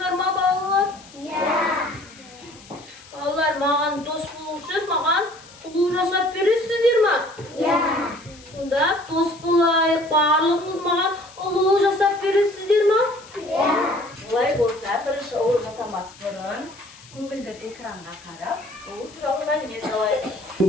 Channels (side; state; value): left; noise; hiss, 22 dB below the sound